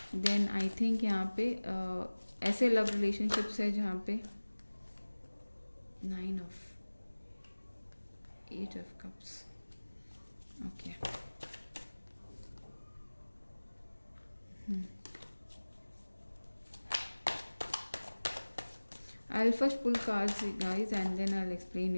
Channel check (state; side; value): inverted; both; correlation -1.00